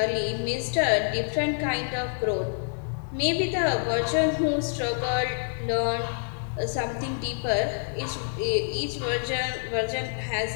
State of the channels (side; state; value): right; silent; 60 dB below the other